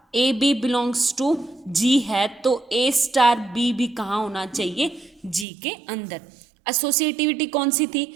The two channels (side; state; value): left; drops out; at 5.5 s